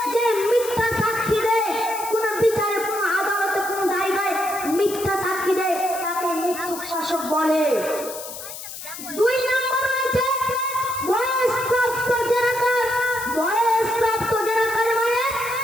যে মিথ্যা সাক্ষী দেয় কোন বিচারে, কোন আদালতে, কোন জায়গায় মিথ্যা সাক্ষী দেয় তাকে মিথ্যুক শাসক বলে। 2 নম্বর রয়েছে বয়স্প্রাপ্ত জেনাকার। বয়স্প্রাপ্ত জেনাকার মানে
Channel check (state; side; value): noise; left; hiss, 11 dB below the sound